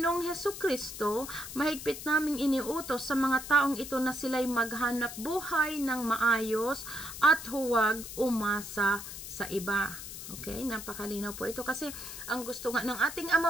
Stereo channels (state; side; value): noise; left; hiss, 10 dB below the sound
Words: Hesukristo, mahigpit naming iniutos sa mga taong ito na sila'y maghanap buhay ng maayos at huwag umasa sa iba. Okay, napakalinaw po ito kasi ang gusto nga ng ating